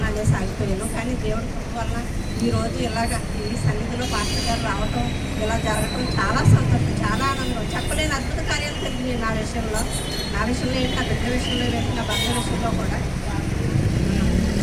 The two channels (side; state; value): both; identical; correlation 1.00